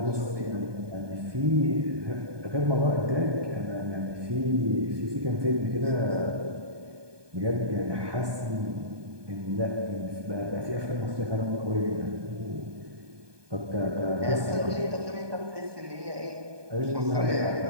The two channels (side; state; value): left; late; 1.2 ms